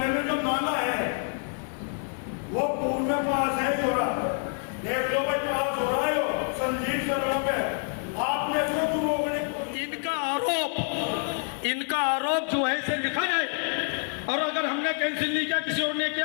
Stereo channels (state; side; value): silent; right; 57 dB below the other